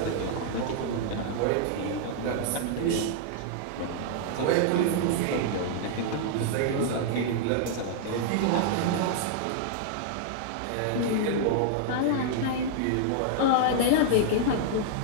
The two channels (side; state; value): both; different; correlation -0.01